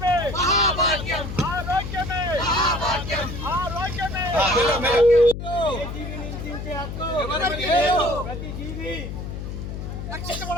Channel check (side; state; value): left; noise; hum, 7 dB below the sound